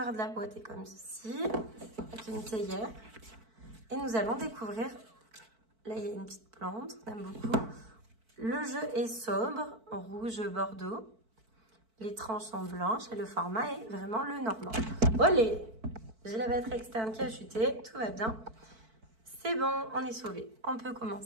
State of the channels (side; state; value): left; late; 4.5 ms